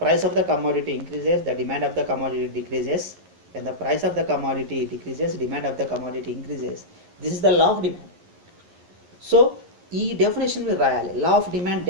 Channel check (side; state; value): left; late; 11 ms